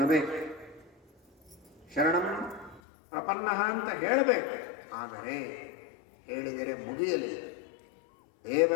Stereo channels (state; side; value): drops out; right; at 2.8 s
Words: ಶರಣಂ ಪ್ರಪನ್ನ ಅಂತ ಹೇಳಬೇಕು. ಆದರೆ ಹೇಳಿದರೆ ಮುಗಿಯಲಿ.